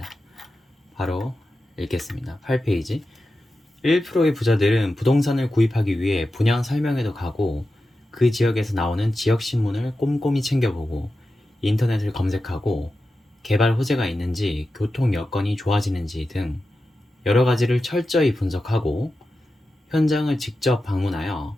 바로 읽겠습니다. 8페이지. 1%의 부자들은 부동산을 구입하기 위해 분양 설명회도 가고 그 지역에서 나오는 지역신문을 꼼꼼히 챙겨보고 인터넷을 검색하고 개발 호재가 있는지 교통 여건이 좋아지는지 등 여러 가지를 철저히 분석하고 현장을 직접 방문하여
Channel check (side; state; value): both; normal; correlation 0.92